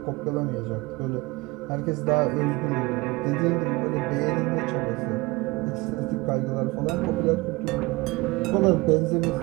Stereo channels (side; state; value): left; quieter; 22.9 dB